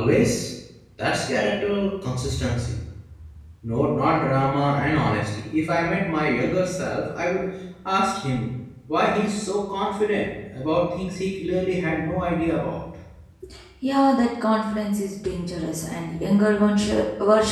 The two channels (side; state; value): both; identical; correlation 1.00